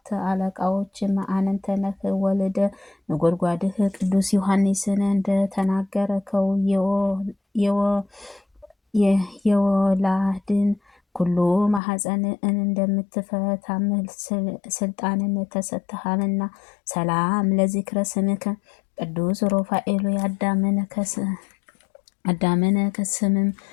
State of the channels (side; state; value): right; drops out; at 11.8 s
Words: አለቃዎች አንተ ነህ። ወልደ ነጎድጓድህ ቅዱስ ዮሐንስን እንደተናገርከው የወላድን ኩሉ ማኅፀን እንደምትፈታም ስልጣንን ተሰጥተሃልና። ሰላም ለዚክረ ስምከ ቅዱስ ሩፋኤል አዳምን ከስምም